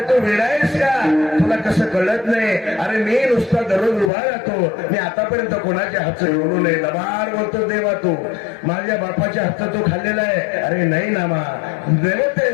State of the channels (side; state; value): right; drops out; at 4.1 s